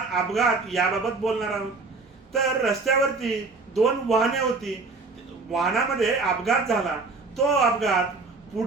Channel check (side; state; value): left; quieter; 3.9 dB